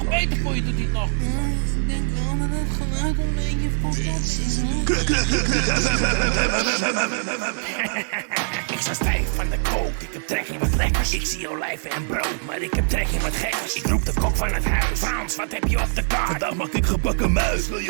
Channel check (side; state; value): left; silent; 56 dB below the other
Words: Beter voor je doet hij het nog. Ik denk wel dat het geluid een beetje fucked up is, hoor. Ik sta stijf van de kook, ik heb trek in wat lekkers. Ik zie olijven en brood, maar ik heb trek in wat gekkers. Ik roep de kok van het huis. Frans, wat heb je op de kaart? Vandaag maak ik gebakken muis, wil